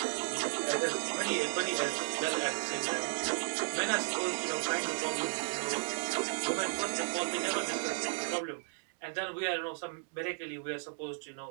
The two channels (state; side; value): silent; left; digital silence